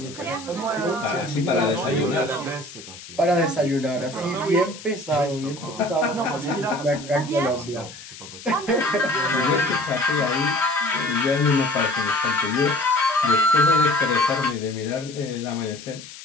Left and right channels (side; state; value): left; noise; hiss, 15 dB below the sound